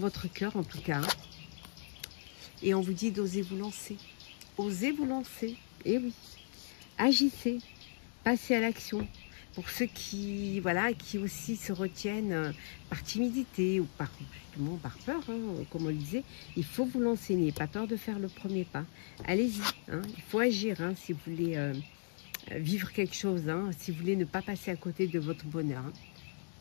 cœur en tout cas. Hein. Et on vous dit d'oser vous lancer. Osez vous lancer, et oui. Agissez, passez à l'action. Pour ceux qui, voilà, qui aussi se retiennent par timidité ou justement par peur, hein, comme on le disait, il faut vous lancer, n'ayez pas peur de faire le premier pas. Allez-y, hein, il faut agir hein, si vous voulez vivre quelque chose, hein, si vous voulez ne pas passer à côté de votre bonheur. Hein.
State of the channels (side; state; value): right; silent; digital silence